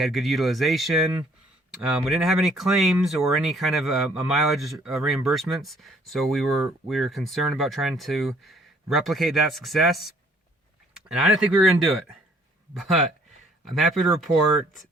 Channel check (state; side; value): normal; both; correlation 0.61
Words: utilization. We didn't have any claims or any kind of a mileage reimbursements, so we were concerned about trying to replicate that success, and I didn't think we were going to do it, but I'm happy to report